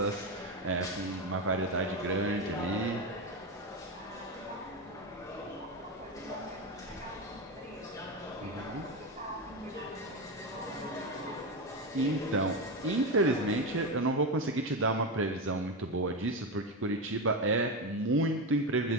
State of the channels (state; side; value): normal; both; correlation 0.14